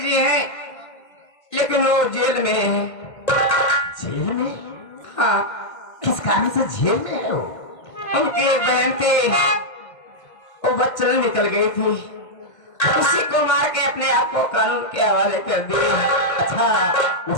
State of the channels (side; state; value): right; late; 1.5 ms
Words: जी हैं लेकिन वो जेल में है। जेल में? हाँ। किस कारण से जेल में है वो? उनकी एक बहन थी, वो बच्चन निकल गई थी, उसी को मार के अपने आप को कानून के हवाले कर दिए। अच्छा,